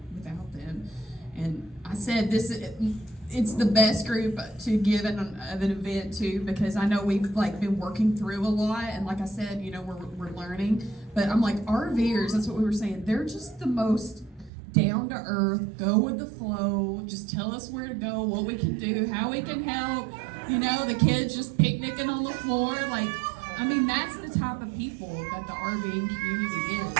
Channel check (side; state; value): left; drops out; at 14.5 s